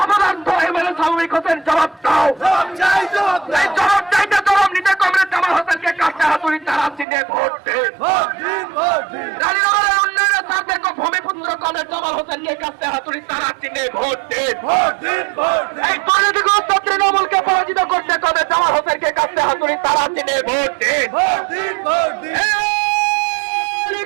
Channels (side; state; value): left; drops out; at 7.1 s